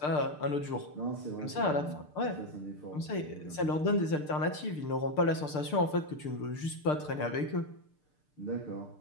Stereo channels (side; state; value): right; late; 6.7 ms